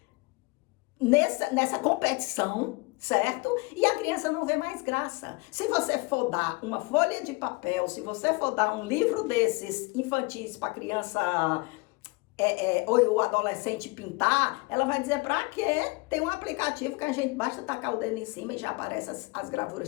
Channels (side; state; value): right; quieter; 26.1 dB